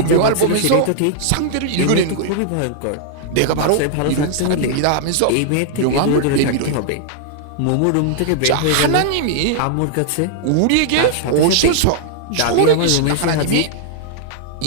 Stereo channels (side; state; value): both; different; correlation -0.01